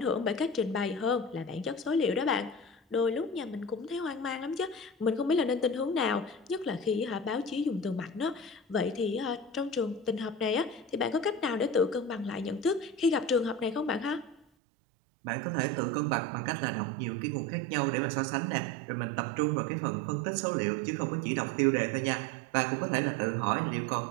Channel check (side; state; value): left; drops out; at 14.5 s